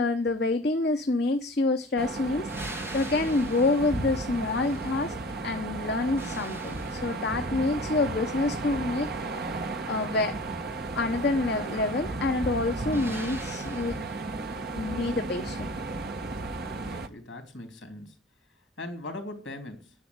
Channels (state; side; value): normal; both; correlation 0.41